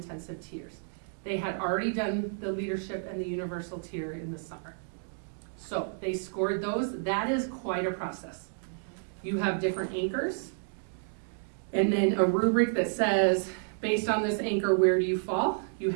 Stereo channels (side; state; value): left; silent; digital silence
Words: tiers. They had already done the leadership and the universal tier in the summer. So they scored those. That is quite a process. You have different anchors, and then a rubric that says, based on this anchor, where do you fall? You